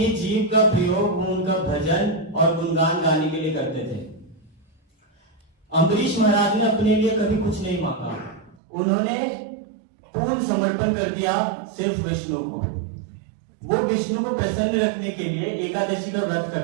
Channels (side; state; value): left; drops out; at 8.6 s